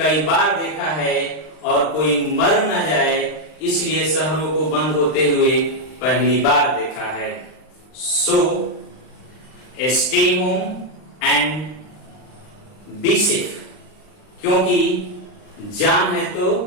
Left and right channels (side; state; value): right; late; 39 ms